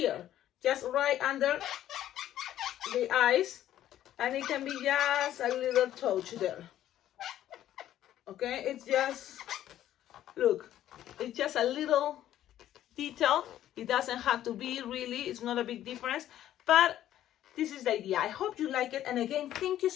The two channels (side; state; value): right; quieter; 12.3 dB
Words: Just right under the eyes. And it can be just a little touch there. Okay, it's just, look, it's just a little detail. It doesn't have to be really, it's not a big difference. But this is the idea. I hope you like it. And again, thank you